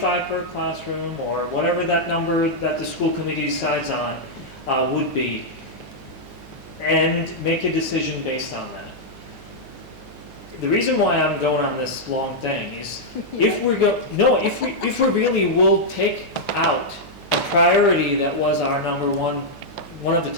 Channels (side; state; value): right; noise; hum, 20 dB below the sound